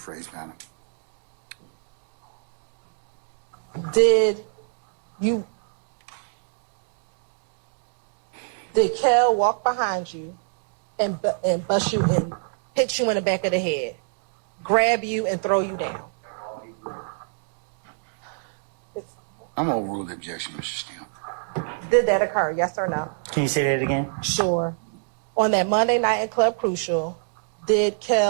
madam. Did Kel walk behind you and bust you and hit you in the back of the head, grab you and throw you down? I'm going to overrule the objection, Mr. Steele. Did that occur, yes or no? Can you say that again? Sure. On that Monday night in Club Crucial, did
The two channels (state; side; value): silent; left; digital silence